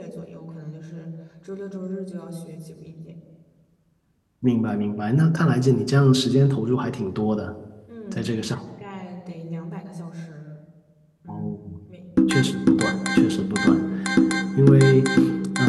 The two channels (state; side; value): identical; both; correlation 1.00